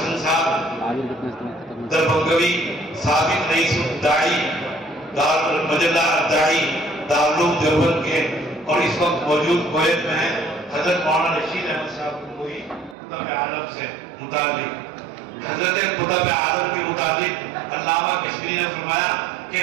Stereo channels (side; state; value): left; drops out; at 13.0 s